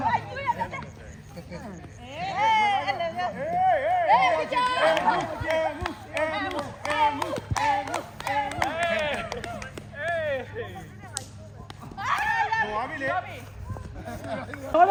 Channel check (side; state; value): both; identical; correlation 1.00